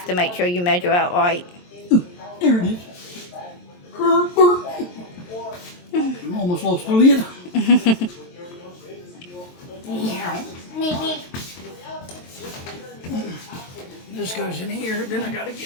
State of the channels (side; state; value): right; late; 23 ms